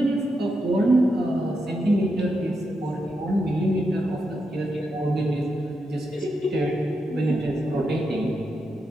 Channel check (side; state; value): both; normal; correlation 0.84